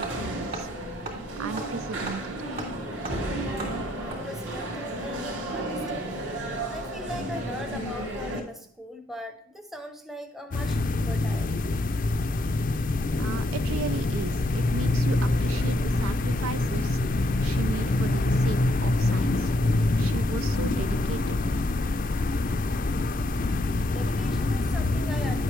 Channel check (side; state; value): both; normal; correlation 0.75